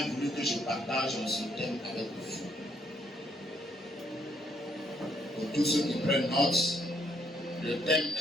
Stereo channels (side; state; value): both; normal; correlation 0.70